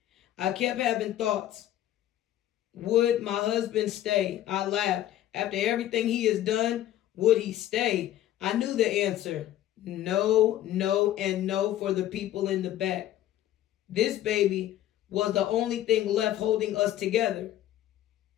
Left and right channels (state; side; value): quieter; right; 12.9 dB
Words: I kept having thoughts. Would my husband stay? I laughed. After everything he has done, would he stay? I knew the answer. No, no, and no for the people in the back. This baby was the only thing left holding us together.